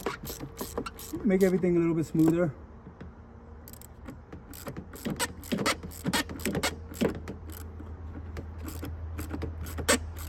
make everything a little bit smoother.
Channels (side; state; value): both; identical; correlation 1.00